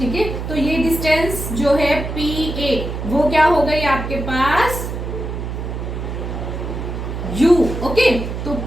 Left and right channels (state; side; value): noise; right; hum, 5 dB below the sound